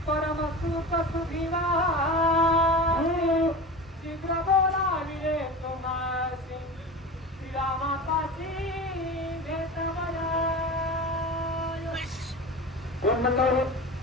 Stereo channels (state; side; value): normal; both; correlation 0.30